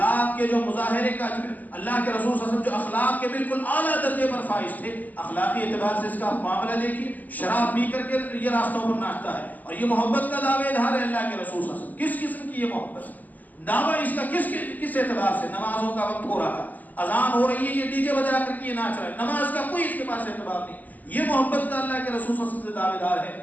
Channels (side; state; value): right; late; 0.082 ms